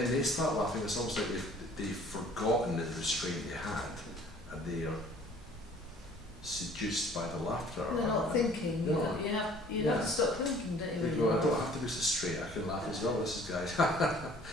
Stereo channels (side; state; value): both; normal; correlation 0.53